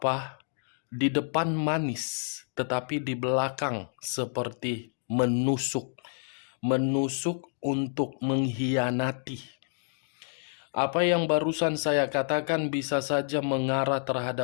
Di depan manis, tetapi di belakang seperti menusuk. Menusuk untuk mengkhianati. Apa yang barusan saya katakan bisa saja mengarah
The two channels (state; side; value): silent; right; digital silence